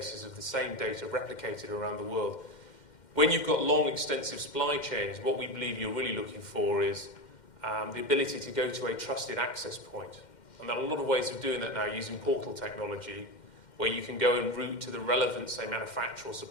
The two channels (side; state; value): right; late; 2.1 ms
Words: of the same data replicated around the world. When you've got long, extensive supply chains, what we believe you're really looking for is the ability to go to a trusted access point. And there are a lot of ways of doing that now using portal technology, where you can go and route to the relevant, say, manufacturer or